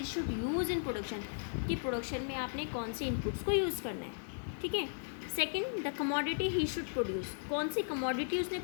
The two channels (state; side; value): silent; right; digital silence